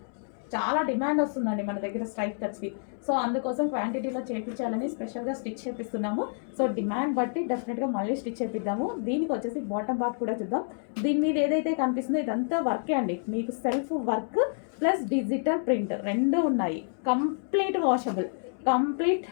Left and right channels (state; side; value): silent; right; digital silence